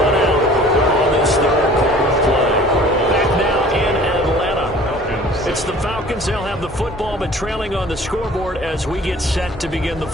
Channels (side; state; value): both; normal; correlation 0.49